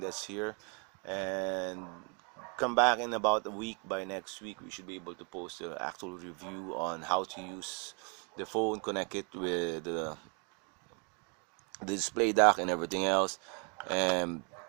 here. And come back in about a week. By next week we should be able to post the actual review on how to use the phone, connect it with the display dock and everything else, and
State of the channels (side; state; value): left; quieter; 36.4 dB